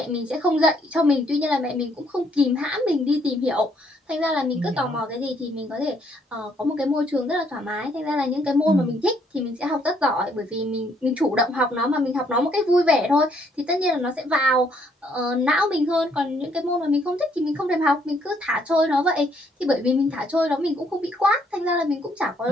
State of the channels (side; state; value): both; normal; correlation 0.68